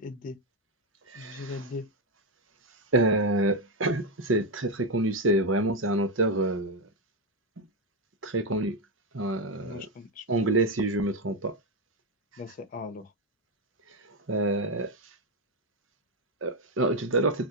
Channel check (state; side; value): normal; both; correlation 0.07